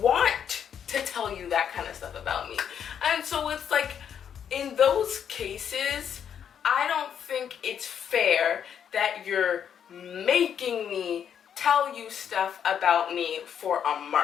want to tell you that kind of stuff about me. And so it's like, in those cases, I don't think it's fair that you're making me tell you stuff about me for a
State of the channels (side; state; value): right; quieter; 8.4 dB